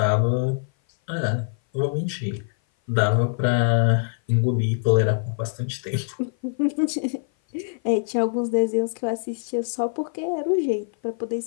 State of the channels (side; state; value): right; silent; 56 dB below the other